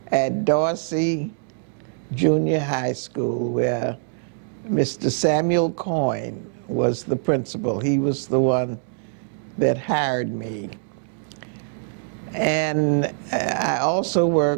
at Dorsey Junior High School, where Mr. Samuel Coyne was the principal. He was the one that hired me. And I also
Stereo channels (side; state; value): left; silent; 63 dB below the other